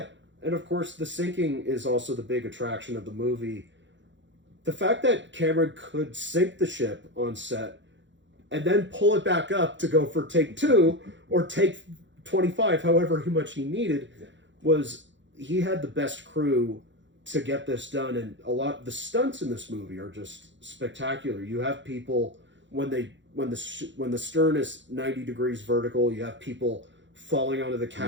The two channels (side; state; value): left; late; 0.54 ms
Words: of course, the sinking is also the big attraction of the movie. The fact that Cameron could sink the ship on set, and then pull it back up to go for take 2, or take 25, however much he needed, was he had the best crew to get this done, and the stunts in this movie are just spectacular. You have people when the stern is 90 degrees vertical, you have people falling onto the